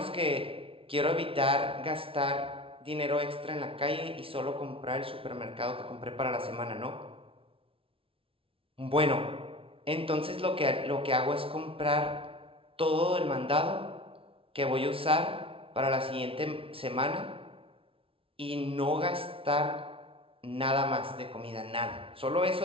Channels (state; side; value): late; left; 0.26 ms